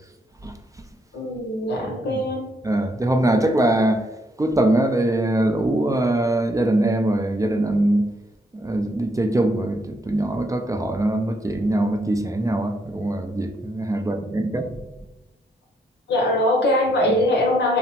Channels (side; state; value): both; normal; correlation 0.72